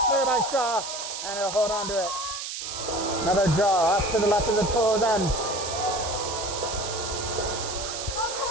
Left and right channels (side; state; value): right; noise; hiss, 6 dB below the sound